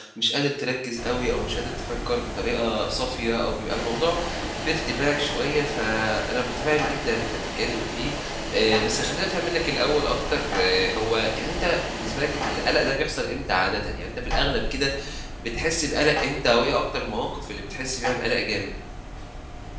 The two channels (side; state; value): both; identical; correlation 1.00